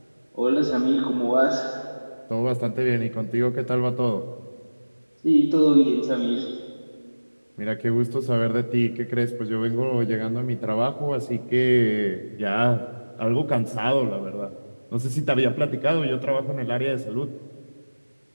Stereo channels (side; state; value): both; inverted; correlation -1.00